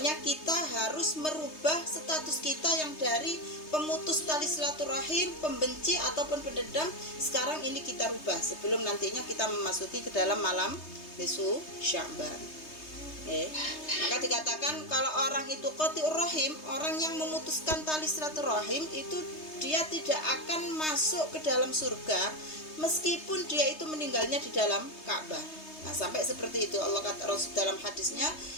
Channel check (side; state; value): right; late; 3.2 ms